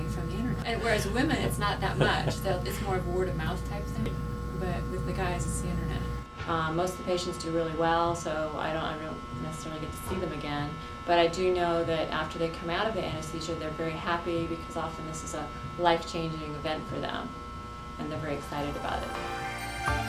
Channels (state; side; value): identical; both; correlation 1.00